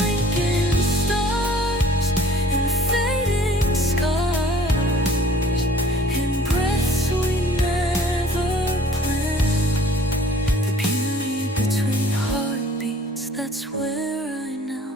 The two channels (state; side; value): normal; both; correlation 0.53